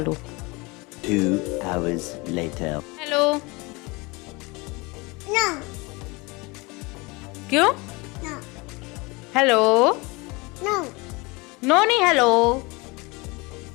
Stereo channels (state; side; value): quieter; right; 25.9 dB